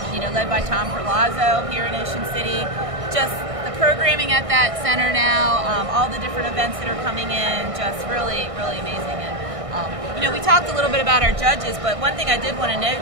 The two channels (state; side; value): late; left; 1.6 ms